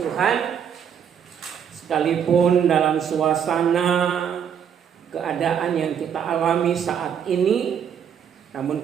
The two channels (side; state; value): left; quieter; 8.2 dB